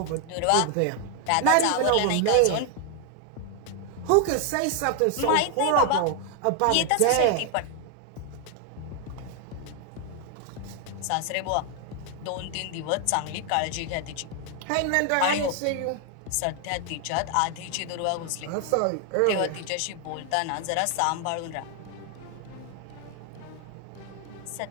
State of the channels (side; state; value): both; different; correlation 0.00